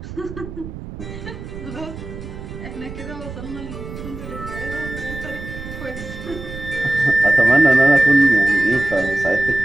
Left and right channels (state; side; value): noise; right; rumble, 11 dB below the sound